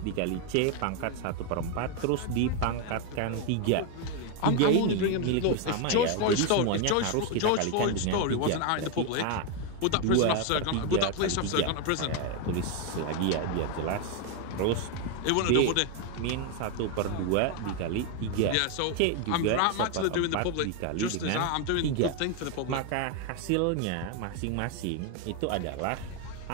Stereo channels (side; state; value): both; different; correlation 0.01